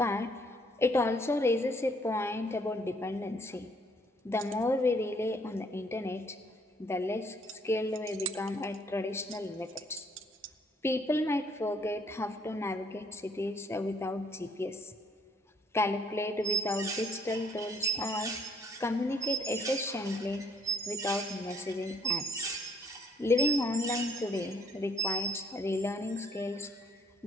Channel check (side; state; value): both; normal; correlation 0.64